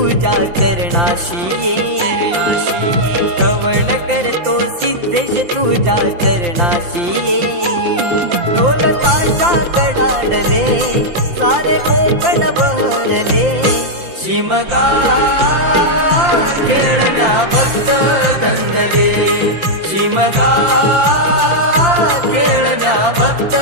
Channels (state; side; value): late; left; 5.8 ms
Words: चरणाशी ये, कवण करतो सिद्धेश तुझ्या चरणाशी ये. ढोल ताशा कडाडले सारे कोकण बहरले, शिमगा खेळण्या भक्त दंगले. शिमगा खेळण्या भक्त